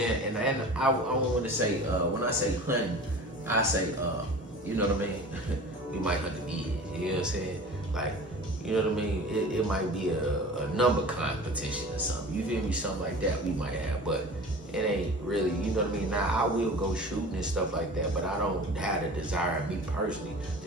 And I want to say, when I say hunting, I say, you know what I mean? We might hunt the dead. You know what I'm saying? Like, you know what I mean? It might be a number competition or something. You feel me? Something like that we might have. But it ain't really, you know what I mean? Now, I will go shooting and stuff like that, but I don't have the desire, me personally,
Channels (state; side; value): normal; both; correlation 0.39